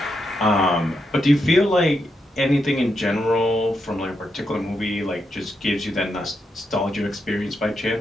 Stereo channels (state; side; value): normal; both; correlation 0.83